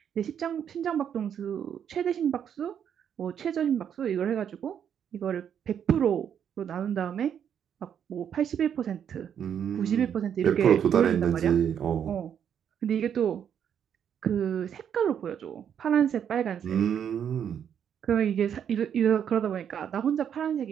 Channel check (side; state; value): left; quieter; 8.6 dB